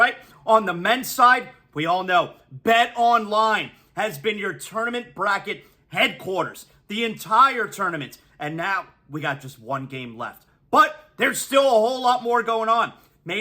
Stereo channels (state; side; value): identical; both; correlation 1.00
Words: On the men's side, we all know Bet Online has been your tournament bracket headquarters the entire tournament. And now we got just one game left. But there's still a whole lot more going on.